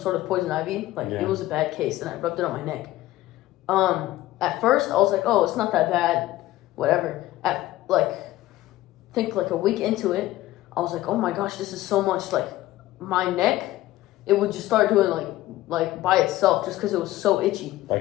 of poison ivy. It was a bad case, and I rubbed it on my neck. At first, I was like, "Oh, it's not that bad, whatever." I think like a week into it, I was like, "Oh my gosh, this is so much." Like my neck, it would just start doing like by itself, just because it was so itchy.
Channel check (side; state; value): right; quieter; 16.0 dB